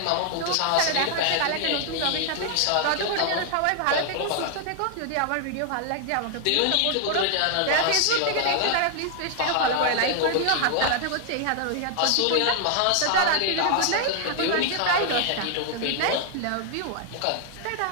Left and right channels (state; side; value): different; both; correlation 0.00